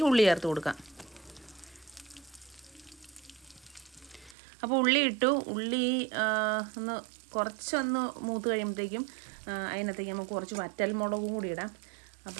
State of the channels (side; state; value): left; drops out; at 4.4 s